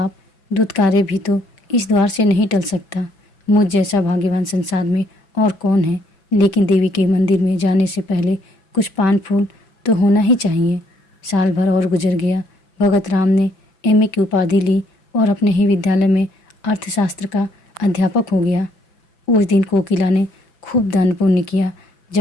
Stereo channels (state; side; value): late; right; 6.0 ms